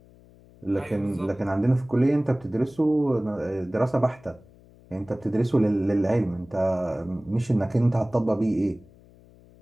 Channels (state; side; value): noise; left; hum, 26 dB below the sound